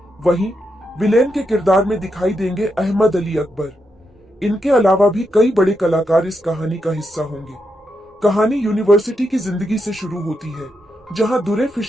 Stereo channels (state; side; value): normal; both; correlation 0.83